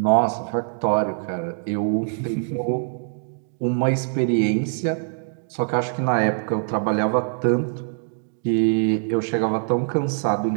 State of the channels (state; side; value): silent; left; digital silence